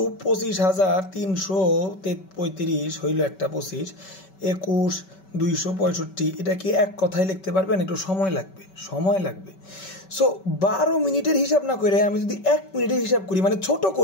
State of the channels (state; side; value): late; right; 5.2 ms